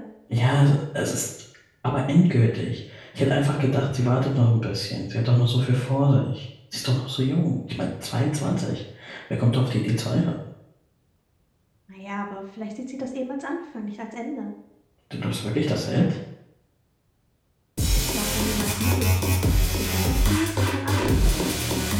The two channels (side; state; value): both; identical; correlation 1.00